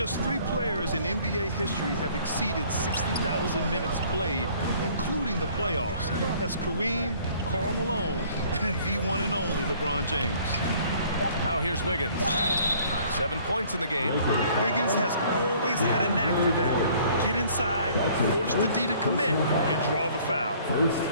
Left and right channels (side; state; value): both; inverted; correlation -0.56